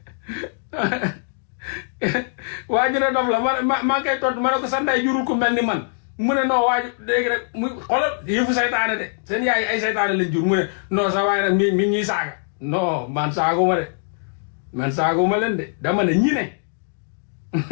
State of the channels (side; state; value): right; silent; digital silence